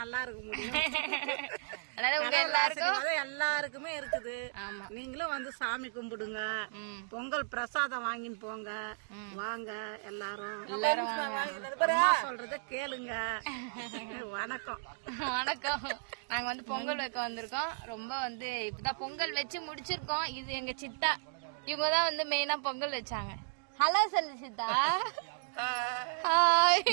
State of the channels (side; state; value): left; silent; digital silence